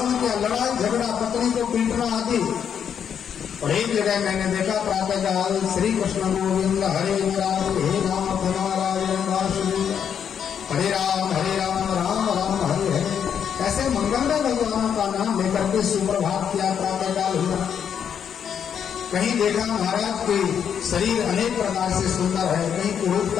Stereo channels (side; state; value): right; quieter; 8.1 dB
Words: किया, लड़ाई झगड़ा, पत्नी को पीटना आदि। और एक जगह मैंने देखा प्रातः काल श्री कृष्ण गोविंद हरे राम हे राम नारायण वासुदेव हरे राम राम राम हरे हरे, ऐसे मंगलमय भगवानों का नाम लेकर के सुप्रभात किया, प्रातः काल हुआ। कहीं देखा महाराज के शरीर अनेक प्रकार से सुंदर है, कहीं